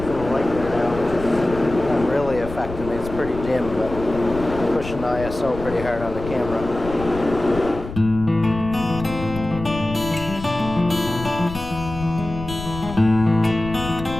so pretty hard on the camera.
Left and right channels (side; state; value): left; noise; rumble, 10 dB below the sound